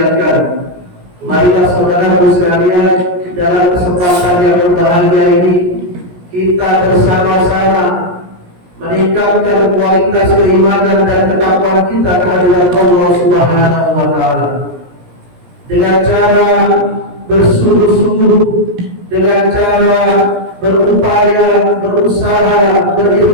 marilah saudaraku sekalian, dalam kesempatan yang berbahagia ini kita bersama-sama meningkatkan kualitas keimanan dan ketakwaan kita kepada Allah Subhanahu wa taala dengan cara bersungguh-sungguh, dengan cara berupaya, berusaha,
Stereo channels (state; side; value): late; left; 17 ms